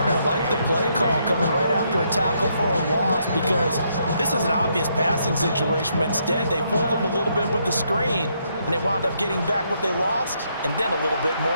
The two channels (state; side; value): inverted; both; correlation -0.75